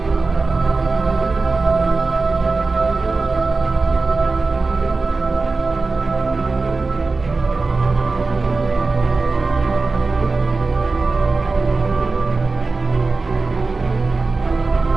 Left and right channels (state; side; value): quieter; left; 3.8 dB